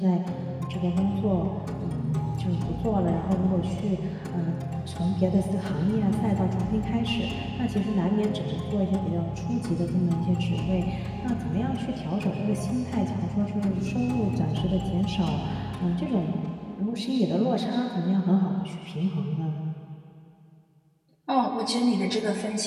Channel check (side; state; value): both; identical; correlation 1.00